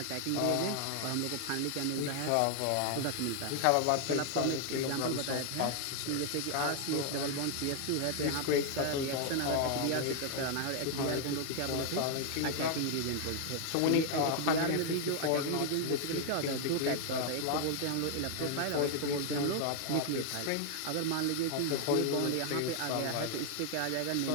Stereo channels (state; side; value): different; both; correlation 0.00